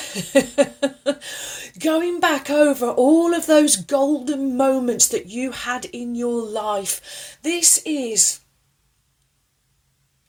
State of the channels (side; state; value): both; identical; correlation 1.00